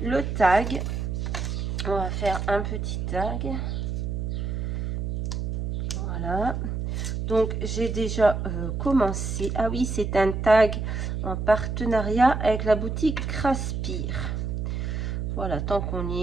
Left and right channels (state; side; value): noise; right; hum, 2 dB below the sound